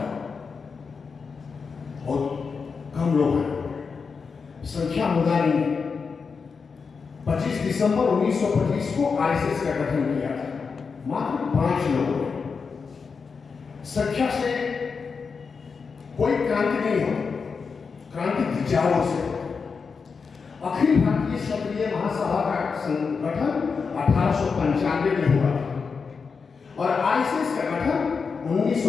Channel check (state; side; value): quieter; right; 5.3 dB